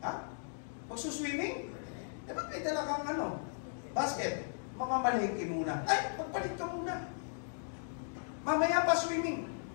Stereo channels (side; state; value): right; silent; digital silence